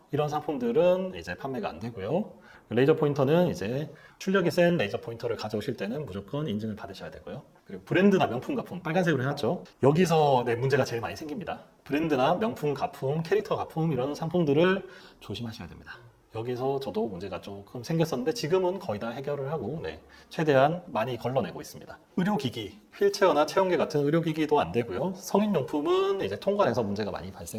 이런 상품들은 이제 판매가 안 되고요. 레이저 포인터는 이제 출력이 센 레이저 포인터를 가져오실 때는 무조건 인증을 받으셔야 되고요. 그리고 브랜드나 명품 가품, 빨간색으로 해놨죠. 여기서 문제가 제일 많이 생깁니다. 브랜드나 명품 가품, 캐릭터 가품, 이런 상품들을 조심하셔야 됩니다. 여기서 저도 문제가 조금 생겼었는데 지금은 거의 다 해결을 하고 최대한 많이 걸러내고 있습니다. 의료기기, 휠체어나 체온계 같은 의료기기도 안 되고요. 성인용품은 이제 통관에서 문제가 많이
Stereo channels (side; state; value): both; identical; correlation 1.00